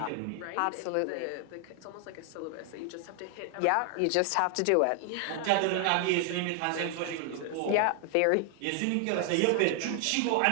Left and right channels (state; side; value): different; both; correlation 0.00